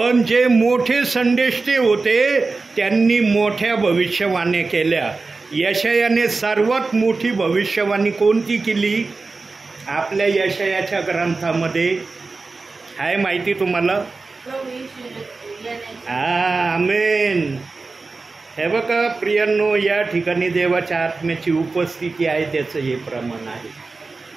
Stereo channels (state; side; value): quieter; left; 3.9 dB